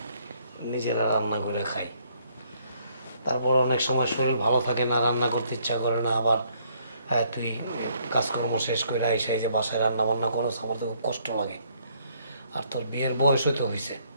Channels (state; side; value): inverted; both; correlation -0.67